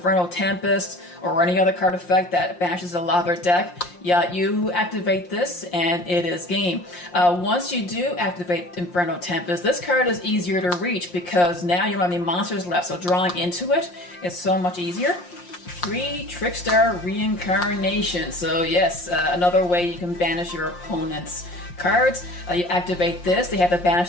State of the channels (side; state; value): right; late; 5.7 ms